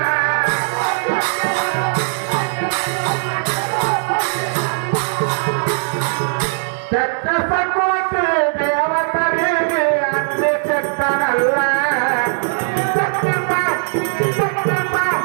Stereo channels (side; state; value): left; silent; 67 dB below the other